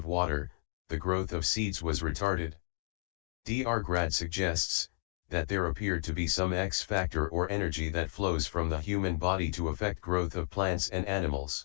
water, the growth of seeds was retarded. Dr. Grad suggests that there appeared to be some X factor or energy that flows from the human body to affect growth of plants and animals.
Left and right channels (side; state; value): right; silent; 56 dB below the other